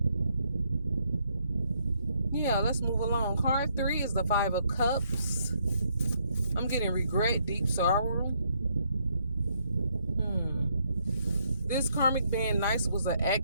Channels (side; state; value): both; inverted; correlation -0.72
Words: Yeah, let's move along. Card 3 is the Five of Cups. I'm getting regret, deep sorrow. This karmic being nice was an